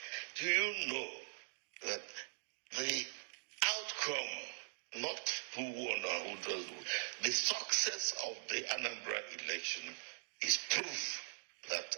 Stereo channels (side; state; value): left; silent; digital silence